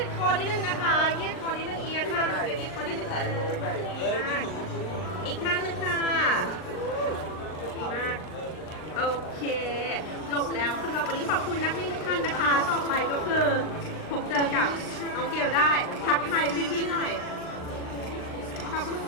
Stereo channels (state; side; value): late; right; 39 ms